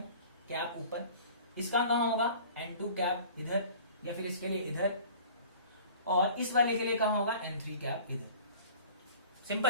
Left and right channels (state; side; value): inverted; both; correlation -0.46